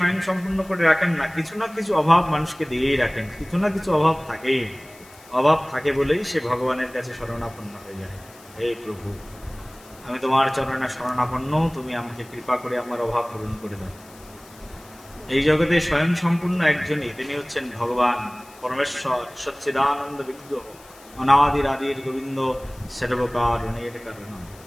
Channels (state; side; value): noise; left; hiss, 23 dB below the sound